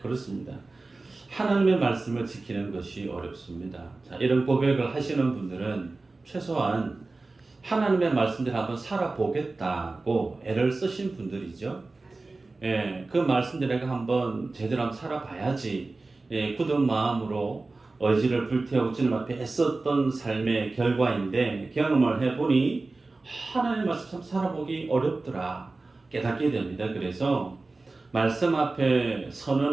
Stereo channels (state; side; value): quieter; left; 3.4 dB